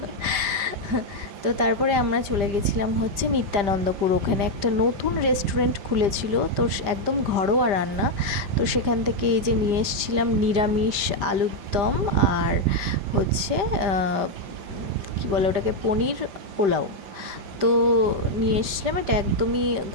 তো তারপরে আমরা চলে গেছিলাম হচ্ছে নিত্যানন্দপুর। ওখানে একটা নতুন রেস্টুরেন্ট খুলেছিল, তো একদম ঘরোয়া রান্না। তো সেখান থেকে এই যে নিয়ে এসেছিলাম নিরামিষ আলুর দম আর হচ্ছে কি বলে ওটাকে, পনির পোলাও। তো নিয়ে এসেছিলাম, এটা একদমই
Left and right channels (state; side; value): late; left; 5.0 ms